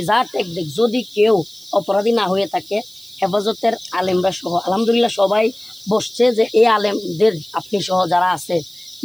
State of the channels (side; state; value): right; noise; hiss, 23 dB below the sound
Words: যা ট্যাগ দেখ, যদি কেউ অপরাধী না হয়ে থাকে হেফাজতের আলেমরা সহ আলহামদুলিল্লাহ সবাই বসছে যে এই আলেমদের আপনি সহ যারা আছে